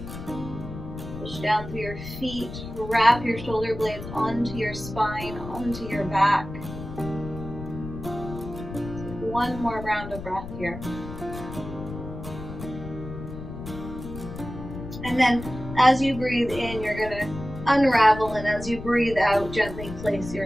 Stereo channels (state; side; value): noise; left; rumble, 10 dB below the sound